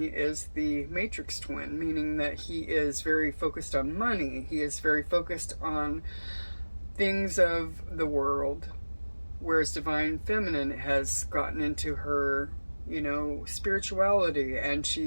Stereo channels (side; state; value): both; inverted; correlation -1.00